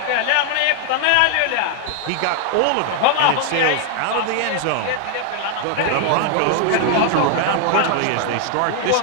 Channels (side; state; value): both; different; correlation 0.00